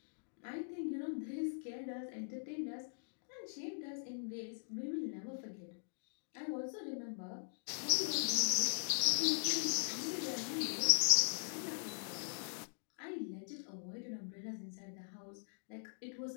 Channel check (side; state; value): right; silent; digital silence